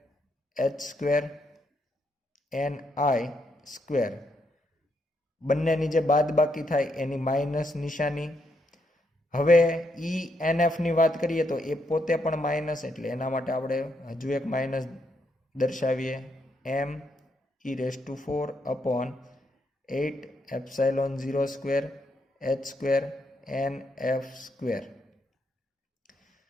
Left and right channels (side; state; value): both; normal; correlation 0.77